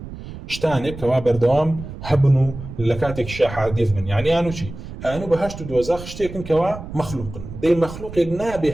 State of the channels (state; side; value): noise; right; rumble, 12 dB below the sound